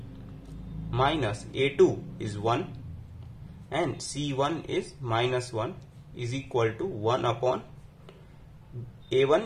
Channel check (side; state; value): both; identical; correlation 1.00